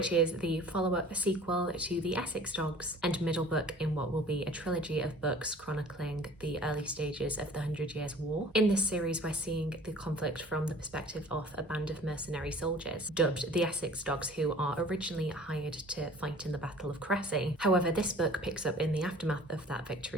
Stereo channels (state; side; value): normal; both; correlation 0.48